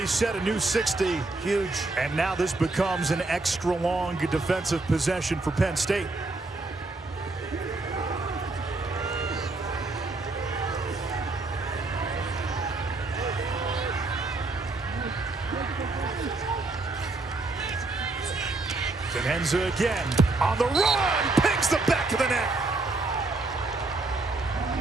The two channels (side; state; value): left; quieter; 3.2 dB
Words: a new 60. Huge. And now this becomes an extra long defensive possession for Penn State. Denenza again on the run, pings the back of the net.